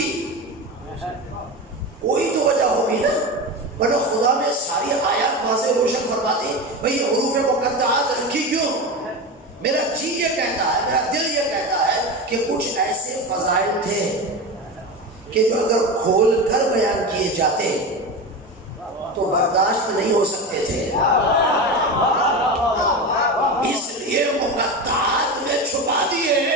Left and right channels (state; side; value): normal; both; correlation 0.23